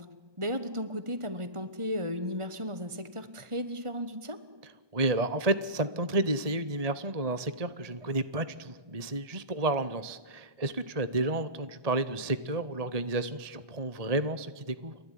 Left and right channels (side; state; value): left; late; 1.7 ms